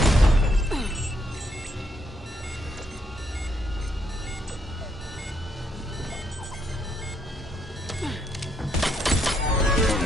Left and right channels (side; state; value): both; normal; correlation 0.75